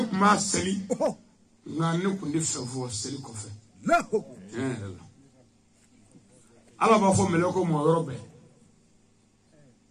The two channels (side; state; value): both; identical; correlation 1.00